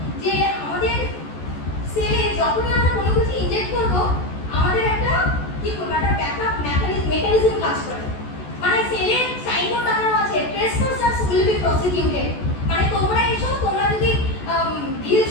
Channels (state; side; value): late; right; 14 ms